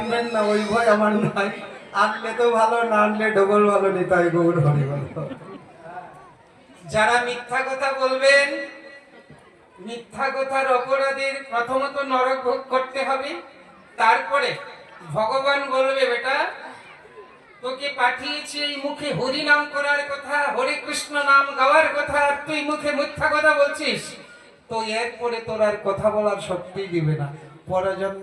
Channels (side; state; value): both; identical; correlation 1.00